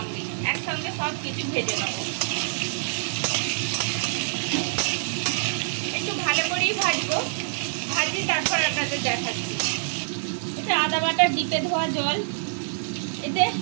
একসঙ্গে সব কিছু ভেজে নেব। একটু ভালো করেই ভাজবো। ভাজি তারপর আপনাদের দেখাচ্ছি। এটা আদা বাটা ডিপে ধোয়া জল। এতে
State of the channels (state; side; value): silent; left; digital silence